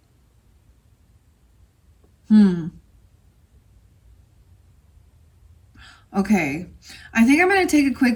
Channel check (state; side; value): identical; both; correlation 1.00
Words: Okay. I think I'm going to take a